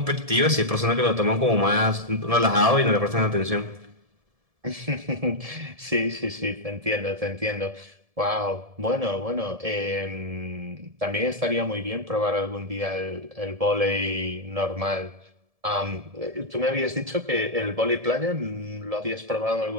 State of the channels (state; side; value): late; left; 1.7 ms